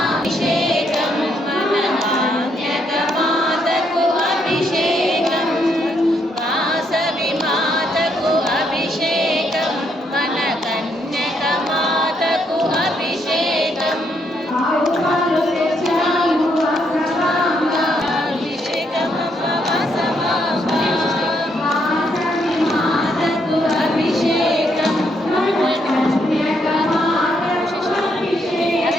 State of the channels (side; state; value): both; normal; correlation 0.74